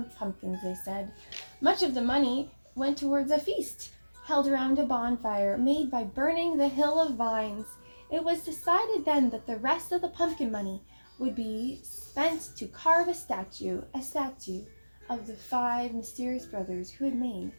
pumpkins," they said. Much of the money went towards a feast held around a bonfire made by burning the hill of vines. It was decided then that the rest of the pumpkin money would be spent to carve a statue of the 5 mysterious brothers who had made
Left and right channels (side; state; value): both; inverted; correlation -1.00